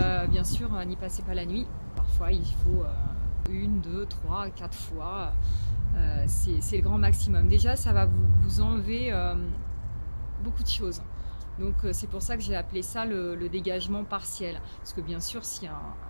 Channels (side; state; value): both; inverted; correlation -1.00